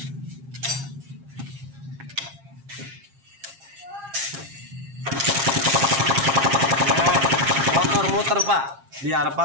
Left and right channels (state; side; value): late; left; 7.4 ms